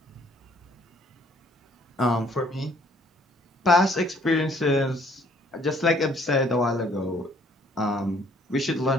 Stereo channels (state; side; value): normal; both; correlation 0.61